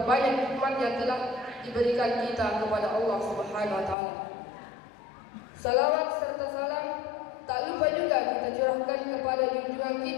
banyak nikmat yang telah diberikan kita kepada Allah Subhanahu wa taala. Salawat serta salam tak lupa juga kita curahkan kepada junjungan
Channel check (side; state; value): right; drops out; at 4.0 s